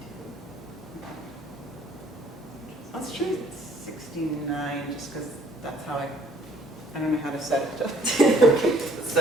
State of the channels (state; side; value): normal; both; correlation 0.60